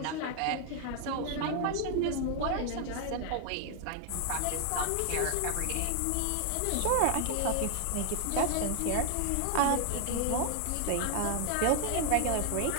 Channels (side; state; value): both; different; correlation 0.00